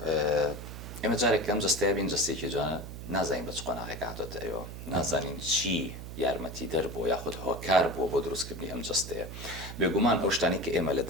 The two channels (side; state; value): right; noise; hum, 10 dB below the sound